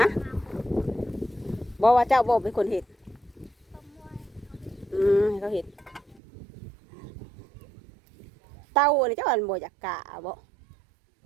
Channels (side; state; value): left; drops out; at 6.2 s